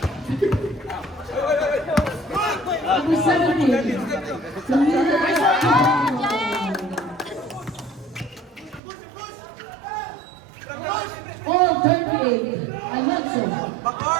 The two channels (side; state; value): left; drops out; at 8.8 s